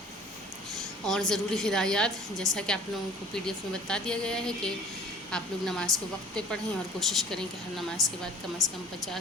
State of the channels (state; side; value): normal; both; correlation 0.48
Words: اور ضروری ہدایات جیسا کہ آپ لوگوں کو PDF میں بتا دیا گیا ہے کہ آپ لوگ نماز کو وقت پہ پڑھیں، اور کوشش کریں کہ ہر نماز کے بعد کم از کم